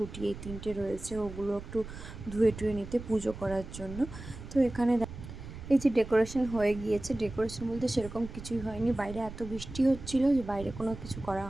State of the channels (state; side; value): noise; right; rumble, 12 dB below the sound